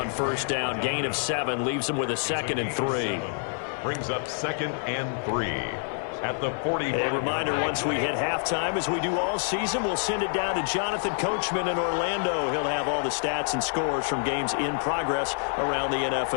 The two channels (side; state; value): right; silent; 60 dB below the other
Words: first down. Gain of 7 leaves him with a 2nd and 3. Brings up 2nd and 3 at the 40. A reminder, once we hit halftime, as we do all season, we'll send it down to Jonathan Coachman in Orlando. He'll have all the stats and scores from games in progress around the